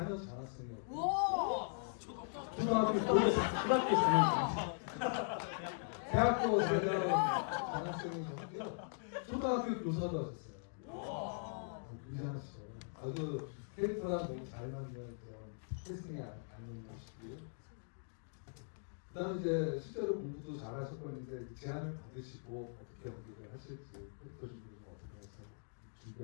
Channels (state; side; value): silent; right; digital silence